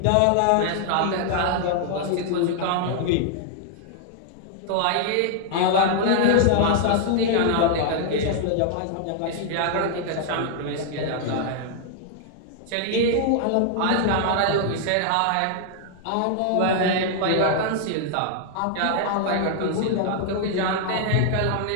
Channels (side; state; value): both; different; correlation -0.01